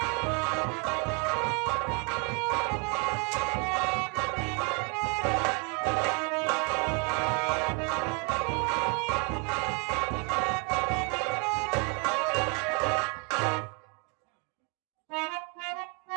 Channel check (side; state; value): left; quieter; 34.1 dB